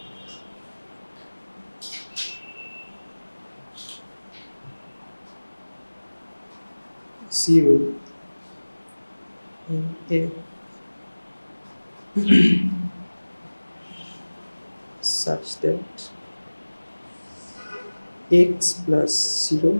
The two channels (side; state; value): both; inverted; correlation -1.00